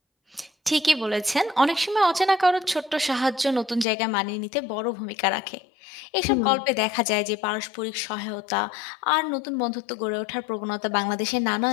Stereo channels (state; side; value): drops out; right; at 3.9 s